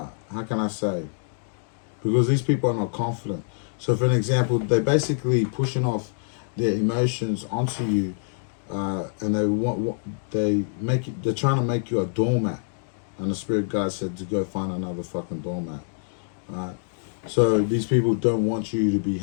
can I say? Because these people are not confident. So for an example, they're basically pushing off their emotions onto you, and they're trying to make you a doormat, and the spirit guide said to go find another fucking doormat, right? So these people don't want you to be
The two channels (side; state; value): right; silent; digital silence